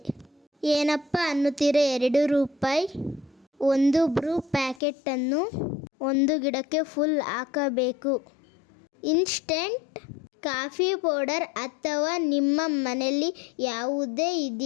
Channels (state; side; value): drops out; right; at 4.8 s